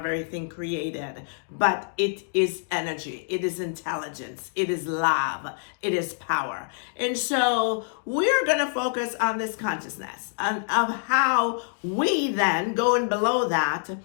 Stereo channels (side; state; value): right; silent; digital silence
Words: everything created, but it is energy. It is intelligence. It is love. It is power. And so we're going to focus on this consciousness and of how we then, going below that,